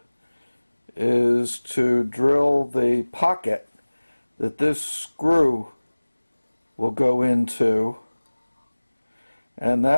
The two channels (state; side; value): inverted; both; correlation -1.00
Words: is to drill the pocket that this screw will go into, and